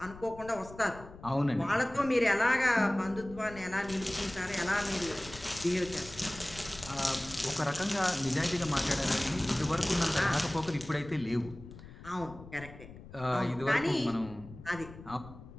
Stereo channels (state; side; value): noise; left; rumble, 16 dB below the sound